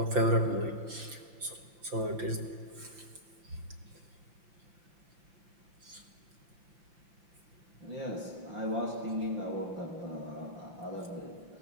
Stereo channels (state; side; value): late; left; 5.8 ms